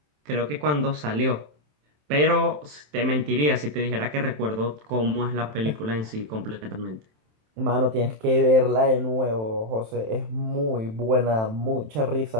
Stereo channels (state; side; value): late; left; 27 ms